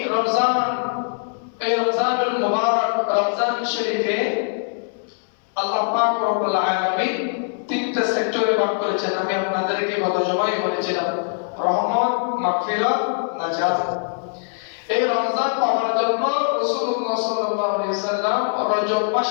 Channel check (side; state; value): right; silent; 64 dB below the other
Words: রমজানুল মুবারক, রমজান শরীফে আল্লাহ পাক রব্বুল আলামিন তিনটা সেক্টরে ভাগ করেছেন। আমি আপনাদেরকে গত জুমায় বলেছিলাম, রহমত, মাগফিরাত, নাজাত। এই রমজান পাওয়ার জন্য রাসূলুল্লাহ সাল্লাল্লাহু আলাইহি সাল্লাম রজব মাস